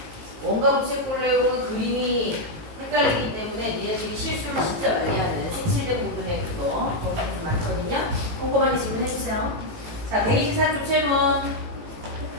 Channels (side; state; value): left; late; 18 ms